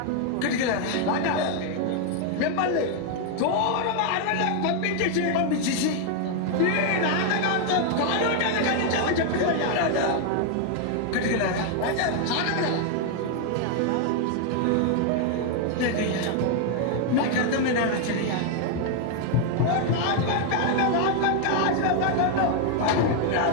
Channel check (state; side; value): different; both; correlation 0.00